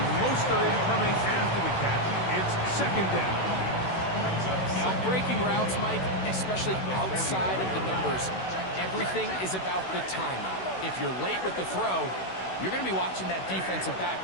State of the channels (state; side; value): late; right; 16 ms